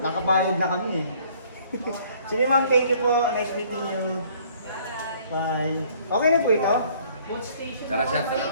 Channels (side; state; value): both; inverted; correlation -0.58